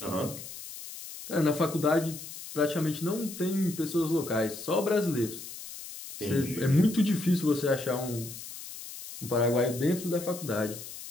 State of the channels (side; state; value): left; noise; hiss, 12 dB below the sound